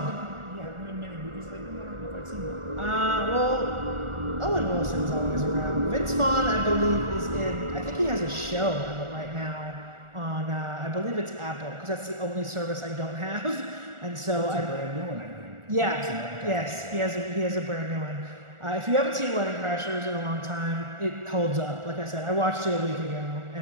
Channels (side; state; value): left; late; 1.4 ms